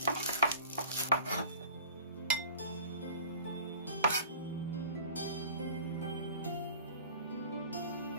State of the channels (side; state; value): both; inverted; correlation -0.42